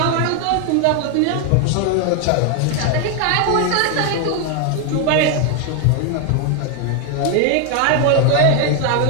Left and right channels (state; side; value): different; both; correlation 0.01